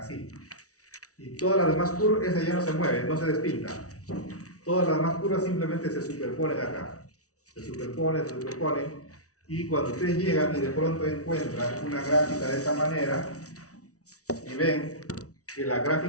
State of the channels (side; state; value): right; late; 0.66 ms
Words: Y todas las demás curvas, esa ya no se mueve, no se despinta. Todas las demás curvas simplemente se superponen acá. Se superponen. Y cuando ustedes llegan y de pronto encuentran una gráfica de esta manera y ven que la